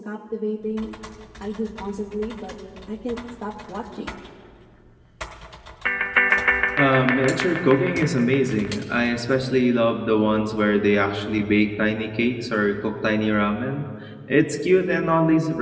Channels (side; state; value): both; identical; correlation 1.00